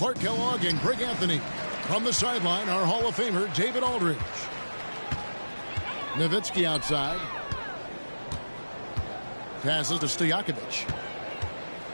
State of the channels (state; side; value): inverted; both; correlation -1.00